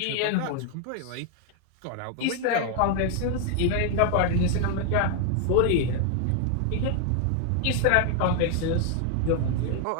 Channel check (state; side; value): different; both; correlation 0.00